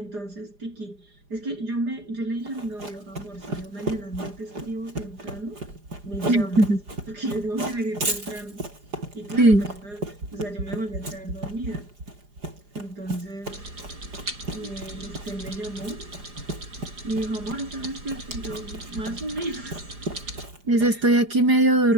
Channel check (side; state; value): left; late; 4.9 ms